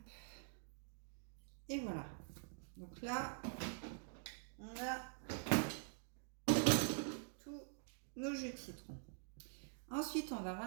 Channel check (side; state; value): left; silent; digital silence